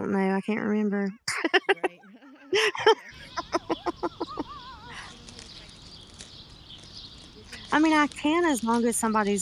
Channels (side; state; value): both; identical; correlation 1.00